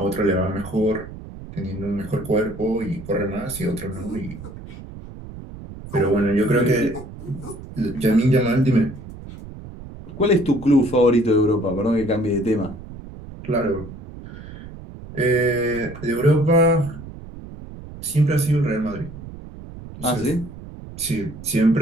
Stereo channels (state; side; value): noise; right; rumble, 14 dB below the sound